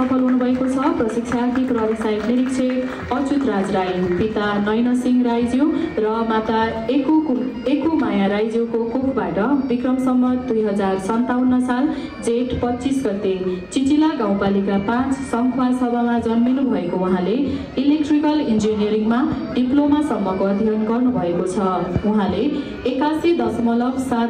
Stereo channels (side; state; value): both; identical; correlation 1.00